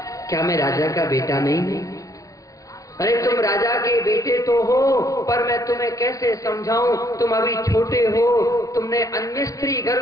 क्या मैं राजा का बेटा नहीं हूं? अरे तुम राजा के बेटे तो हो, पर मैं तुम्हें कैसे समझाऊं, तुम अभी छोटे हो, तुमने अन्य स्त्री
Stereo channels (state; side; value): late; right; 0.16 ms